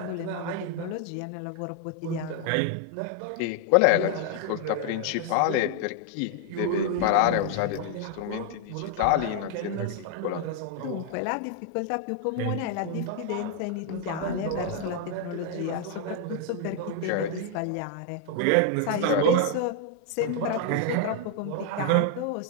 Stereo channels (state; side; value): different; both; correlation 0.00